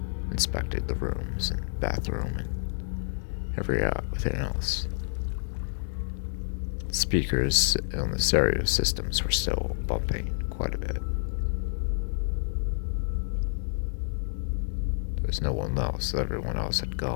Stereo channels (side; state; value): right; silent; digital silence